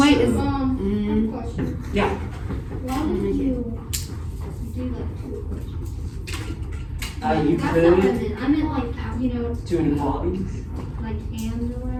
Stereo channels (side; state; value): both; identical; correlation 1.00